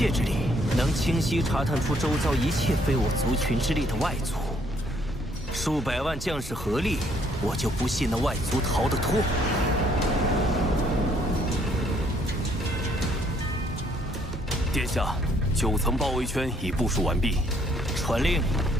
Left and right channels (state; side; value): normal; both; correlation 0.66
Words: 之力，能清晰查探出周遭一切非我族群之力的外族。数百万将士合力，我就不信那外族逃得脱。殿下，9层包围圈已部署完毕。传令，